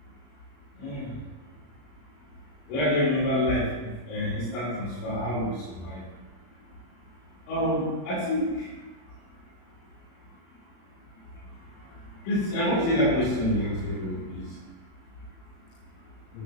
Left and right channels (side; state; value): right; late; 36 ms